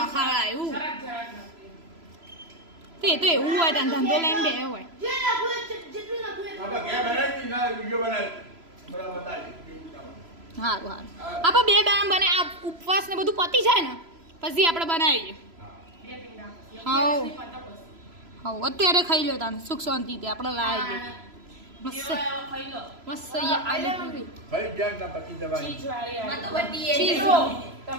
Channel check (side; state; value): left; late; 3.0 ms